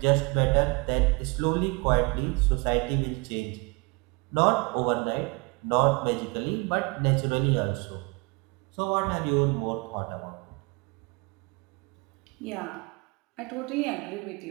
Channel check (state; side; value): quieter; left; 28.4 dB